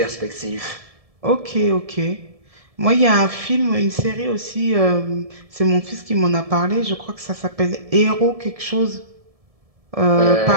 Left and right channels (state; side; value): late; left; 1.7 ms